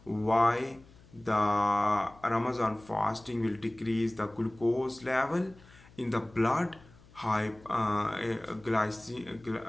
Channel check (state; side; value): noise; left; hum, 25 dB below the sound